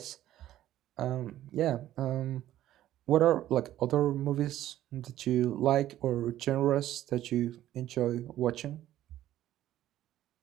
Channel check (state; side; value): quieter; left; 13.2 dB